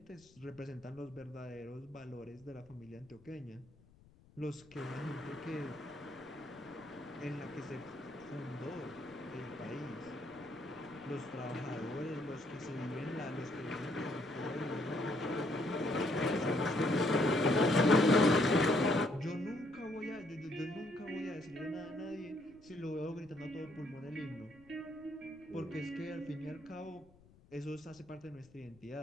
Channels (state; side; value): noise; left; rumble, 26 dB below the sound